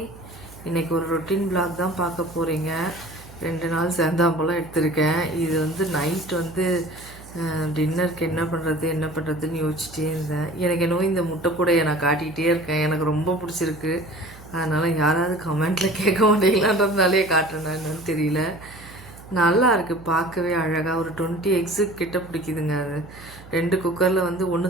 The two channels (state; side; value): noise; right; hum, 20 dB below the sound